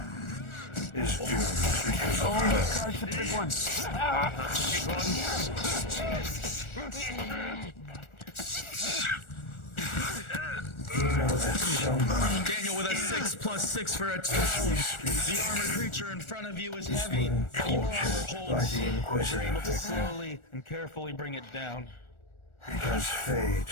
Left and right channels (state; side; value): late; right; 1.4 ms